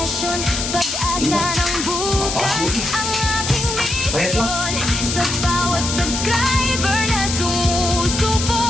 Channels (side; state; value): left; noise; hiss, 3 dB below the sound